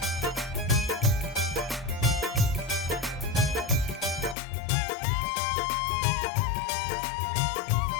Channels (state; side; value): drops out; right; at 4.4 s